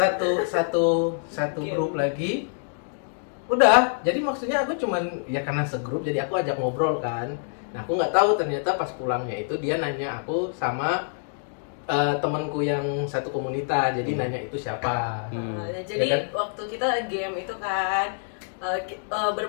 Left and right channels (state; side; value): silent; right; digital silence